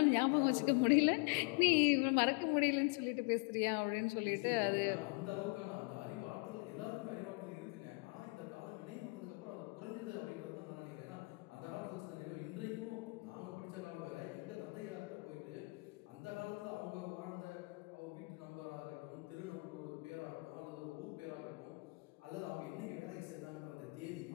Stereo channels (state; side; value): quieter; right; 28.8 dB